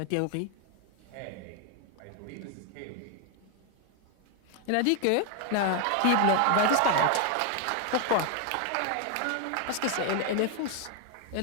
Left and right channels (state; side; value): different; both; correlation 0.00